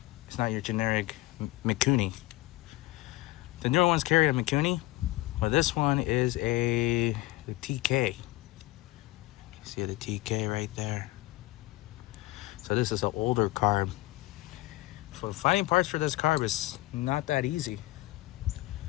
is not your generic Mikuni. The newer ones carry a Mikuni, but this one is a TK. See the TK right there. So this is an older carb. So finding parts for this carb is not that easy.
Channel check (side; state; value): right; quieter; 18.7 dB